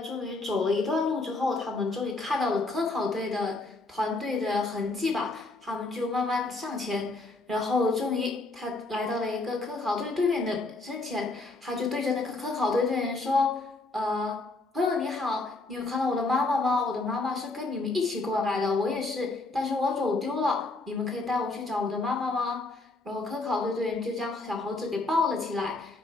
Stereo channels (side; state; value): right; quieter; 3.3 dB